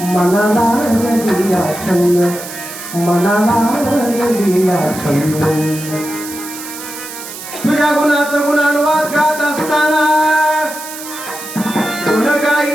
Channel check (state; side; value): noise; right; hiss, 11 dB below the sound